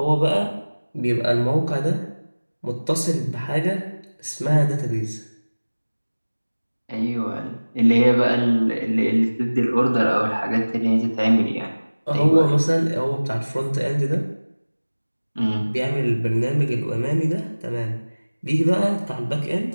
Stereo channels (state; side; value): inverted; both; correlation -1.00